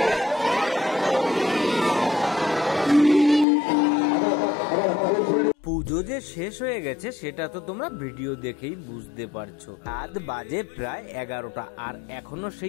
পুজো যে শেষ হয়ে গেছে সেটা তো তোমরা ভিডিও দেখেই বুঝতে পারছো। রাত বাজে প্রায় 11টা, আর এখনো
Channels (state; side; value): drops out; right; at 3.5 s